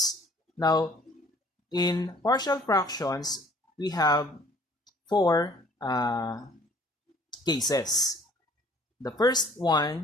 Now, in partial fractions, we have four cases. The first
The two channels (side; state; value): both; normal; correlation 0.55